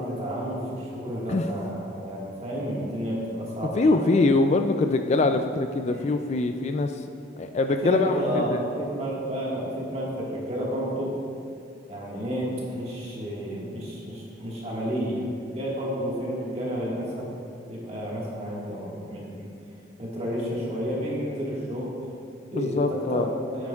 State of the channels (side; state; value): both; normal; correlation 0.51